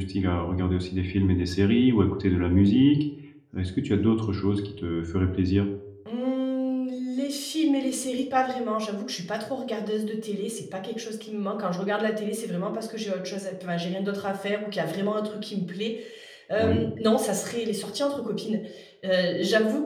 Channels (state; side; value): identical; both; correlation 1.00